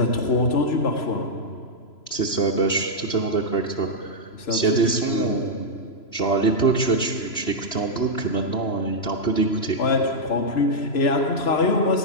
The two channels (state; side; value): late; right; 3.0 ms